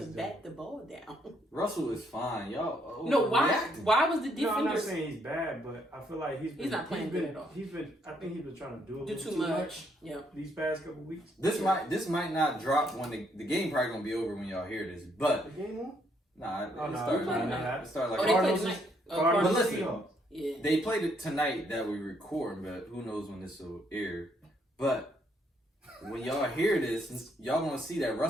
is bat the ball down. Russell is fine, y'all. No, why? overreacting. Why was the No, I'm not defenders saying he's bad, but I feel like he's not playing good at all. I think he's been trying to do a do little too much? Yeah. these past couple weeks. This might not drop when the game probably gonna be over when y'all hear this, The but game on? nah, it Oh, no, started we playing like tonight. it started like Oh, they Cardinals played is- tonight. Cardinals But and listen, Seahawks. Yeah. They played it tonight that we record, but who knows when this will air. But when y'all hear this, y'all gonna see that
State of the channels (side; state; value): both; normal; correlation 0.71